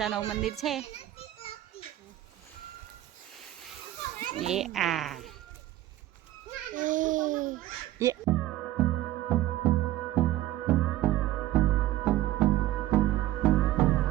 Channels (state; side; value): quieter; left; 14.7 dB